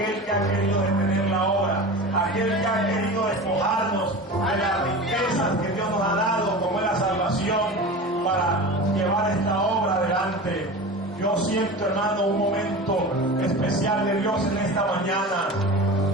que ha querido detener la obra, aquel que ha querido despojarnos de las riquezas que Dios nos ha dado, como es la salvación, para llevar esta obra adelante. Yo siento, hermano, un momento especial de Dios en esta mañana.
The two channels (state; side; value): normal; both; correlation 0.32